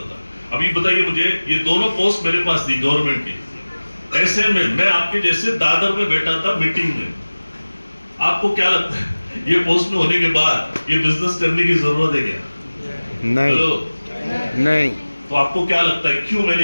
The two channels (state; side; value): inverted; both; correlation -1.00